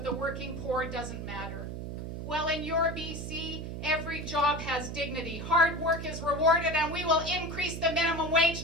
the working poor doesn't matter. Well, in your BC, every job has dignity. Hard work is rewarded, and we will increase the minimum wage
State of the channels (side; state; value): right; noise; hum, 7 dB below the sound